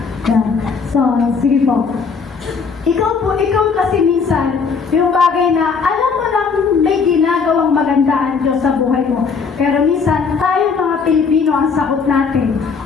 Yan. So, sige po. Ikaw kasi minsan, yung bagay na alam mo lang may ginagawang maganda ang Diyos sa buhay mo. Pero minsan, tayo mga Pilipino ang sakot natin.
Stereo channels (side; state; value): right; quieter; 5.4 dB